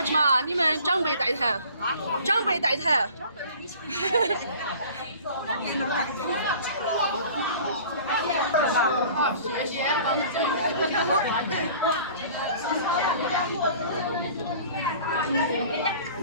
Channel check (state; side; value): inverted; both; correlation -0.46